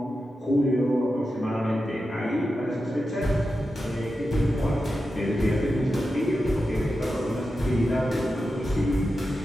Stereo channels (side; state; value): both; normal; correlation 0.90